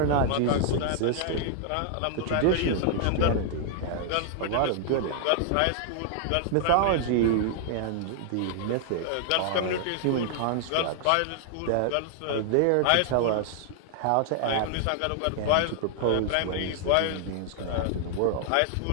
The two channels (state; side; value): different; both; correlation 0.00